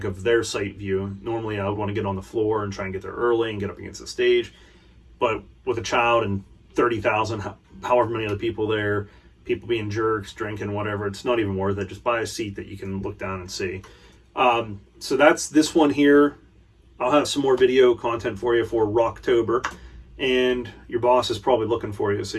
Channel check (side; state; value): both; identical; correlation 1.00